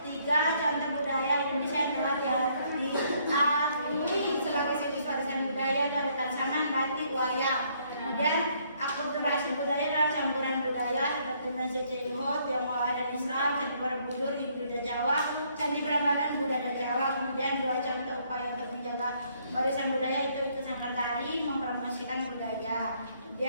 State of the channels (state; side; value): inverted; both; correlation -0.68